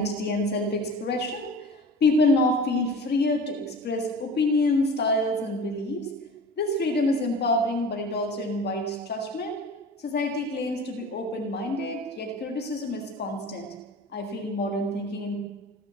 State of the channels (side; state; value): both; normal; correlation 0.38